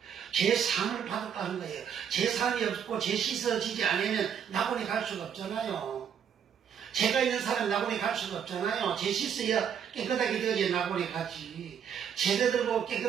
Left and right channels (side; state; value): left; quieter; 8.1 dB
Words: 죄상을 받았다는 거예요. 죄상이 없고 죄 씻어지지 않으면 낙원에 갈 수가 없잖아요. 죄가 있는 사람은 낙원에 갈 수가 없잖아요. 죄 씻어야 깨끗하게 되어야 낙원에 가지. 제자들 보고